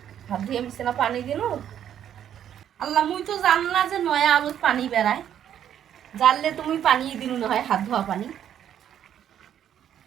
হাত ধুইয়া মিশছে না পানি দিনু আল্লাহ মুই তো জান না যে নয়া আলুত পানি বেড়ায় জানলে তুমি পানি দিনু না হয় হাত ধোয়া পানি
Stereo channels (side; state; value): left; quieter; 9.9 dB